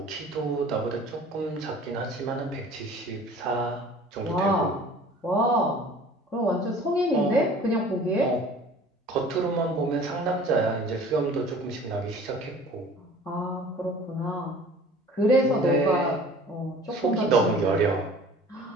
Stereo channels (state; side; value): normal; both; correlation 0.47